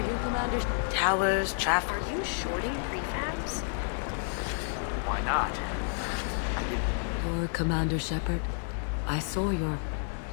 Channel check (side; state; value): right; silent; 58 dB below the other